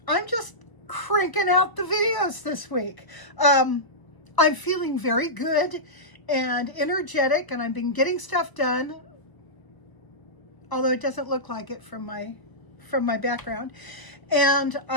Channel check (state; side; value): late; right; 1.0 ms